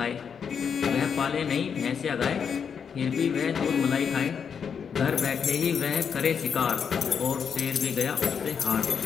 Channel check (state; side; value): quieter; right; 6.9 dB